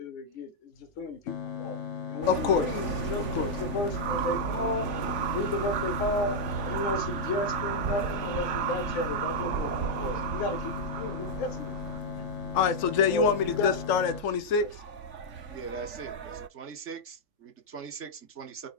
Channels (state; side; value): late; right; 3.6 ms